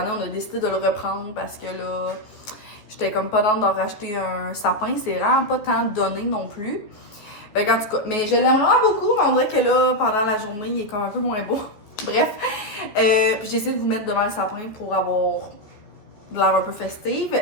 on a décidé de le reprendre parce que là, j'étais comme pas dans d'en racheter un sapin. C'est vraiment pas tant donné non plus. Fait qu'en tout cas, mais je l'aime vraiment beaucoup, mais on dirait que là, pendant la journée, il est comme un peu moins beau. Bref, puis j'ai essayé de vous mettre devant le sapin pour avoir de l'air un peu festive.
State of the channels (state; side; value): late; right; 14 ms